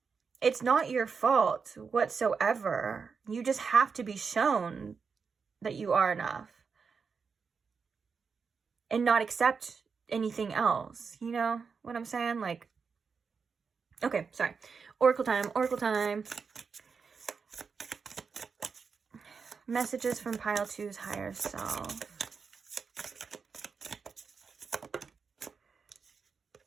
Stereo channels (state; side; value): quieter; left; 5.5 dB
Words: it's not your fault whatsoever. You just have to be shown that you are enough and not accept anything else. You know what I'm saying? Like, okay, sorry. Oracle time, oracle time. Messages from pile 2's higher self.